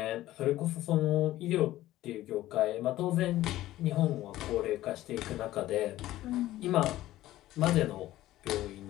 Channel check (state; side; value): quieter; right; 15.2 dB